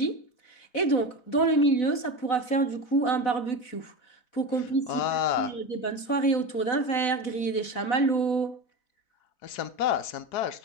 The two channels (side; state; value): right; late; 4.0 ms